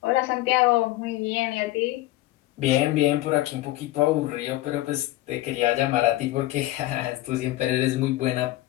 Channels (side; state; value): right; quieter; 16.8 dB